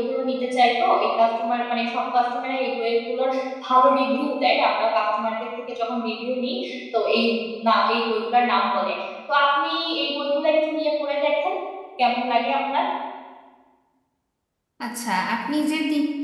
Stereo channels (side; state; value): both; identical; correlation 1.00